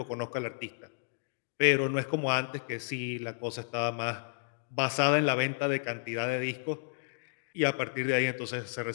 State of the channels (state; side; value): silent; right; digital silence